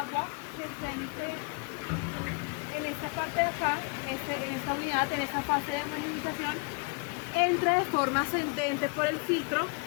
se penetre en esta parte de acá, en esta unidad, en esta fase de homogeneización, entra de forma ascendente por el filtro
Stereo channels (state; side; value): quieter; right; 34.1 dB